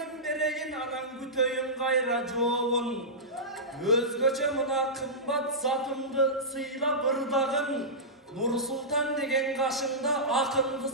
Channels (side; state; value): both; normal; correlation -0.15